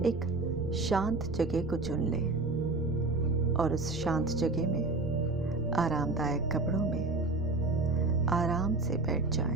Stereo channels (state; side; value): quieter; left; 3.3 dB